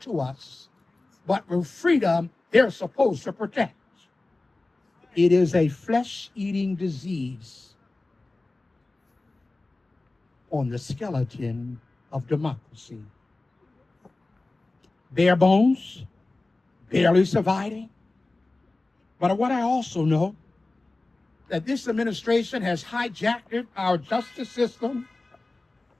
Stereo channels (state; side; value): quieter; right; 3.1 dB